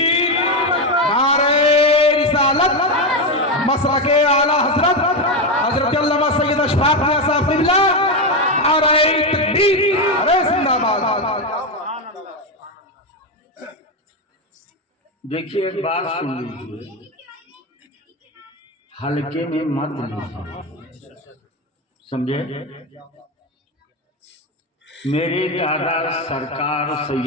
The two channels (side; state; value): both; normal; correlation 0.11